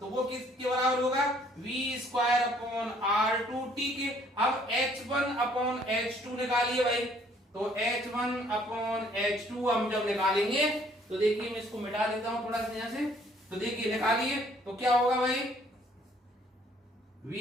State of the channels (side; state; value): both; normal; correlation 0.62